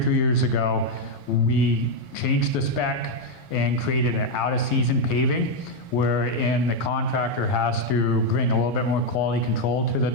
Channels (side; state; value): right; late; 7.4 ms